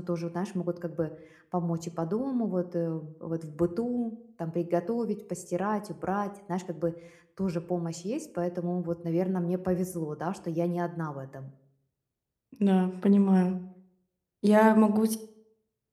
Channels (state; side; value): identical; both; correlation 1.00